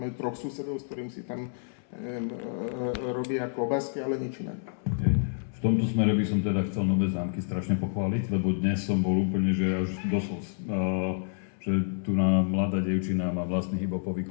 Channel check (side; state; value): right; silent; 59 dB below the other